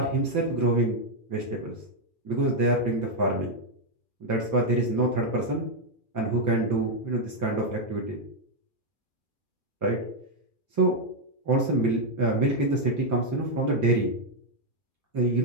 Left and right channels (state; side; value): late; right; 2.4 ms